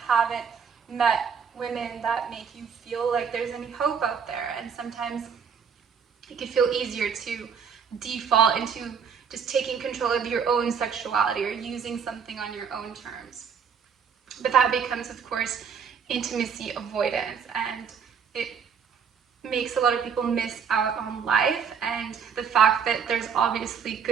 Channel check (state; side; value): quieter; left; 6.8 dB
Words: met women that make you feel like there's any hope out there. And sometimes it can feel easier to default into just taking control of your own sexuality or using something on your own terms. But that becomes, of course, intimacy avoidance, and it makes a lot of people miss out on life. And the fact that there's obviously